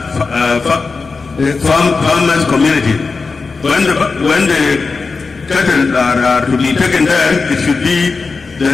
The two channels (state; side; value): quieter; right; 4.4 dB